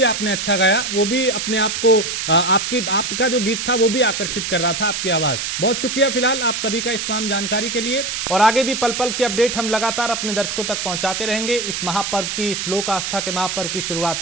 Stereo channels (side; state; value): right; noise; hiss, 3 dB below the sound